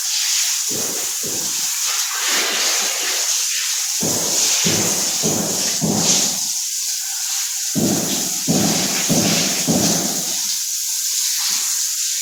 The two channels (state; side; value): identical; both; correlation 1.00